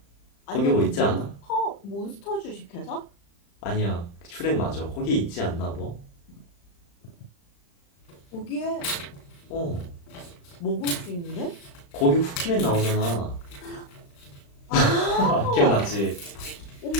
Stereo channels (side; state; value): right; late; 35 ms